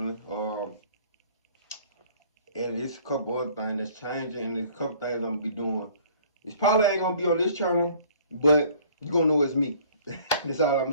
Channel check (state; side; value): inverted; both; correlation -0.54